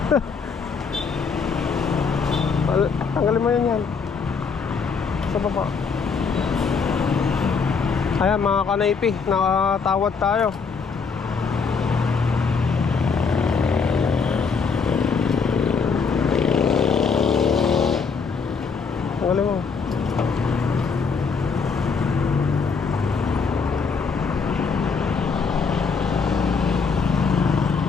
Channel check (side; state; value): right; quieter; 5.3 dB